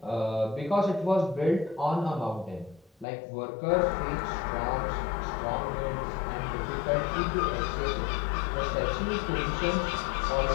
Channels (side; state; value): right; drops out; at 3.1 s